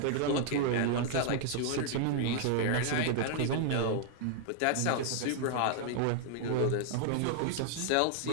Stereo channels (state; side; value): different; both; correlation 0.00